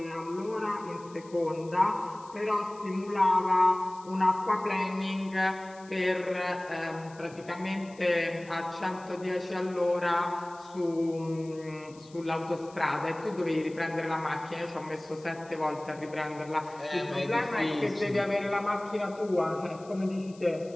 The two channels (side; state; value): left; noise; hiss, 25 dB below the sound